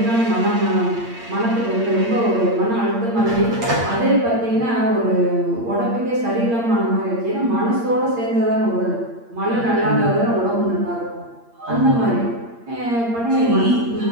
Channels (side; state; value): left; late; 8.6 ms